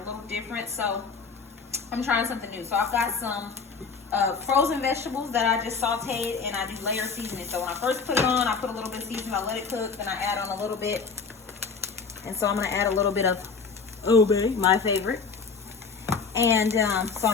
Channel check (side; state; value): right; quieter; 5.1 dB